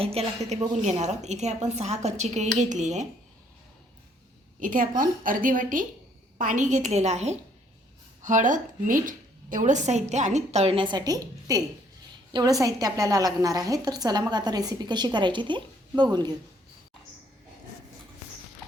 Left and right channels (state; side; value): normal; both; correlation 0.65